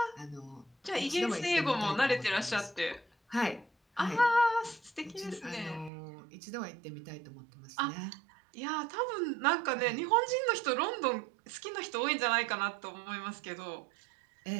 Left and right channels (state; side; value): drops out; left; at 5.9 s